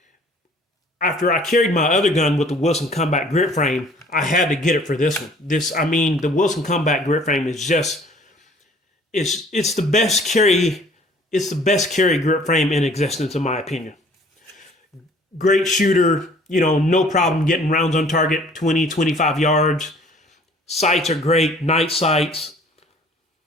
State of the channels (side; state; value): both; normal; correlation 0.54